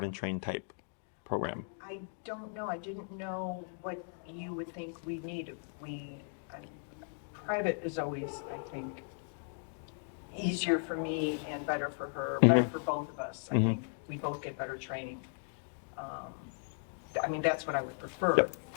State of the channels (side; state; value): right; silent; 53 dB below the other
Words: and train type program? I don't know. I didn't know what you would think we need. Private is always, I think, easier for me and better for her, better for both of us. I think we both get better training. That's what I would prefer.